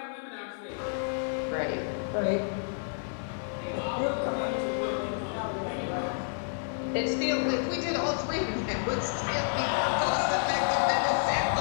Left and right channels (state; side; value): silent; right; 58 dB below the other